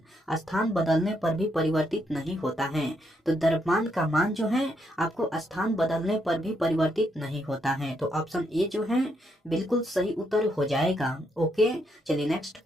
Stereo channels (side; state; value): both; normal; correlation 0.77